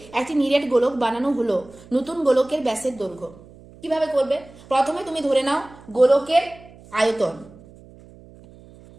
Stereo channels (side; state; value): right; noise; hum, 22 dB below the sound